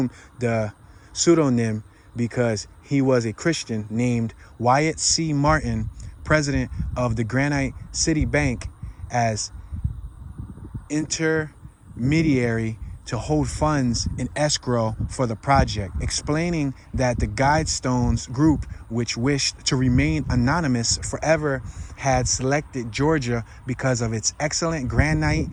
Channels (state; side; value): identical; both; correlation 1.00